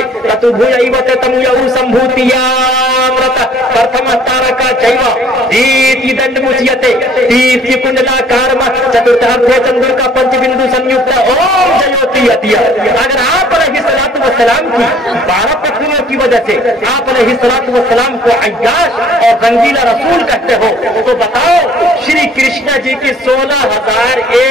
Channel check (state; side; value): normal; both; correlation 0.56